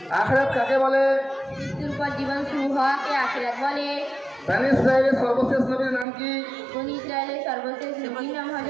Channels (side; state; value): left; drops out; at 6.1 s